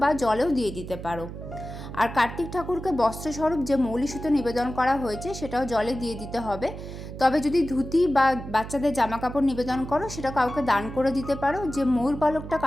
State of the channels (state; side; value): noise; right; hum, 10 dB below the sound